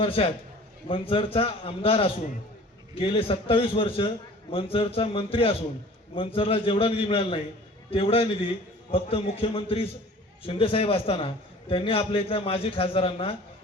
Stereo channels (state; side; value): normal; both; correlation 0.46